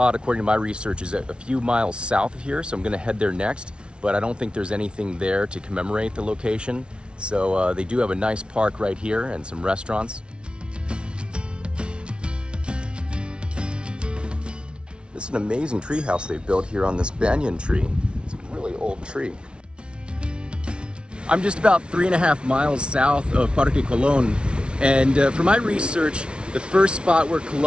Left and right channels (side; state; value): left; late; 0.057 ms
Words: according to my research, is a few miles south of here, so I'm gonna head there next, but I don't think there's anything there to commemorate the location. So they do have a nice park right here and some restaurants. This is an amazing tree house they've built here on this banyan tree. It's a really old tree. I'm just about 3.5 miles south of Parque Colón, and for my research, the first spot where